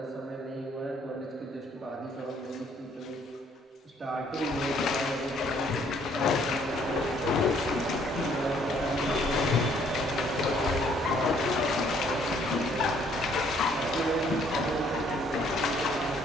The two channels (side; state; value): both; normal; correlation 0.64